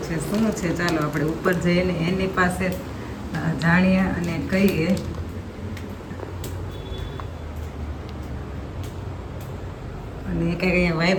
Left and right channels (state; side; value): identical; both; correlation 1.00